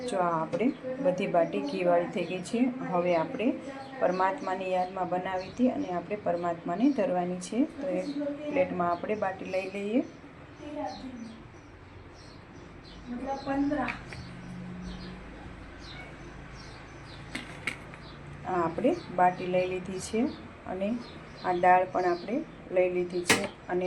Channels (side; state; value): both; identical; correlation 1.00